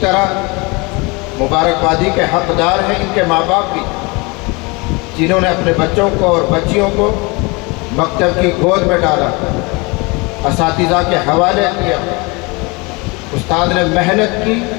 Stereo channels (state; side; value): quieter; right; 27.1 dB